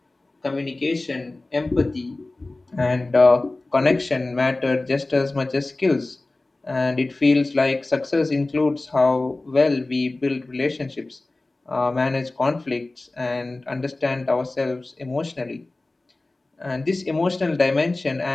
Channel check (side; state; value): right; quieter; 3.0 dB